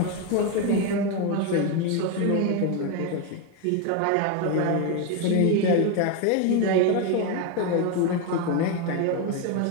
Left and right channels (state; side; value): different; both; correlation 0.02